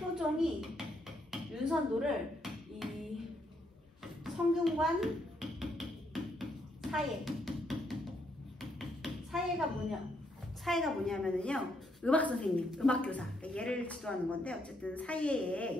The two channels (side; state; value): both; normal; correlation 0.75